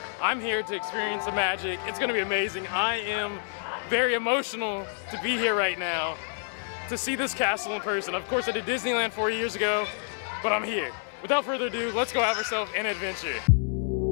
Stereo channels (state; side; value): silent; right; 56 dB below the other